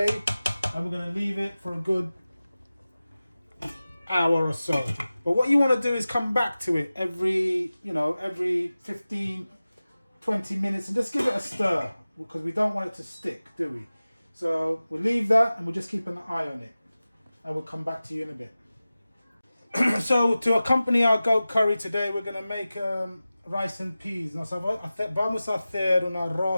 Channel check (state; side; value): inverted; both; correlation -0.96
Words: And we're going to leave it for a good hour or so. But what you want to do is come back to it every 15, 20 minutes and just give it a stir, because we don't want it to stick, do we? So we'll leave that and we'll just keep an eye on it. And we'll come back to you in a bit. So to accompany our goat curry today, we're going to make rice and peas. No, so vamos a hacer un